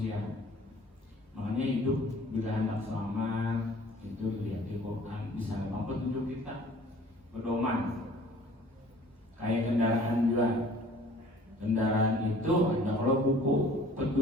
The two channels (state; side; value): normal; both; correlation 0.51